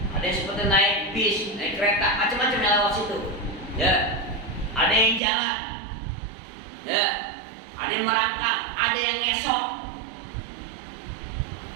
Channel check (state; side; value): drops out; left; at 5.2 s